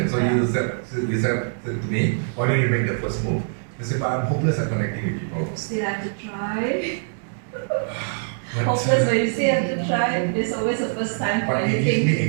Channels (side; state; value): left; silent; digital silence